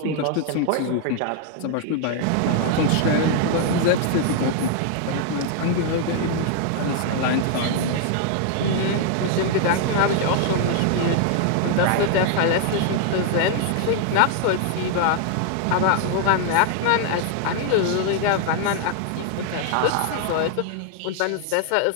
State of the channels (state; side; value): different; both; correlation 0.00